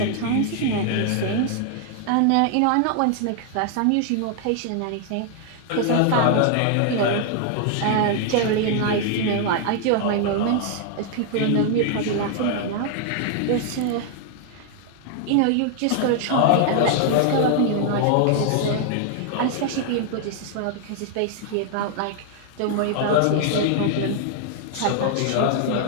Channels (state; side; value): different; both; correlation 0.00